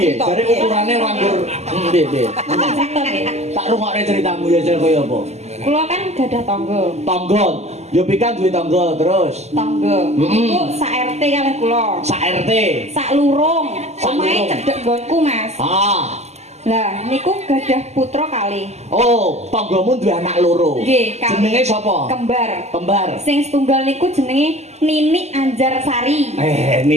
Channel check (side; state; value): left; late; 0.32 ms